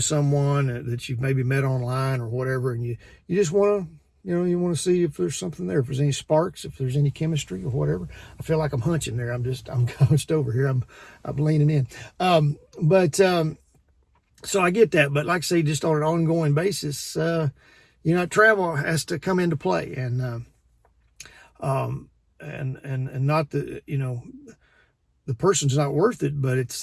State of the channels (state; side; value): identical; both; correlation 1.00